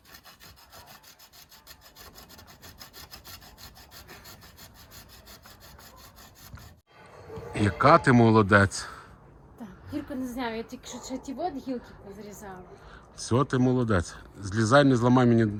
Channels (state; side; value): identical; both; correlation 1.00